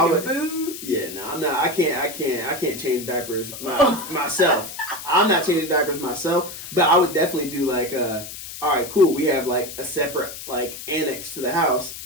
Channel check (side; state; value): left; noise; hiss, 11 dB below the sound